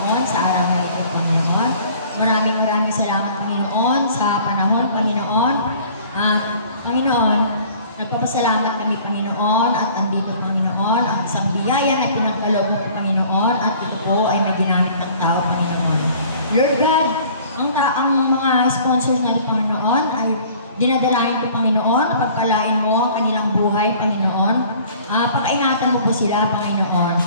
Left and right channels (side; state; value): both; inverted; correlation -0.51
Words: sa araw na ito, Panginoon. Maraming salamat Panginoon sa panahon, Panginoon. At Panginoon, nagpapasalamat kami Panginoon at andito Panginoon ang isang biyaya na pinagkaloob mo Panginoon at ito po ay may ginamit ng tao Panginoon. Lord God, ang mga sponsors na Panginoon ay dinadalain ko Panginoon, pagpalain mo ang kanilang buhay Panginoon. Pakaingatan mo po sila Panginoon.